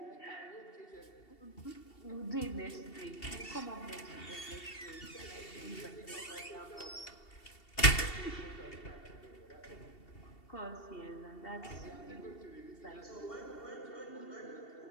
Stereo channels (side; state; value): right; late; 2.7 ms